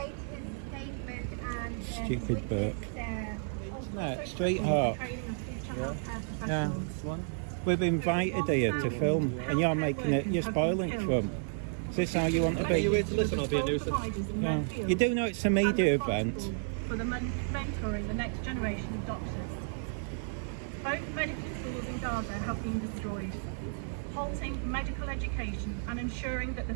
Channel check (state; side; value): silent; left; digital silence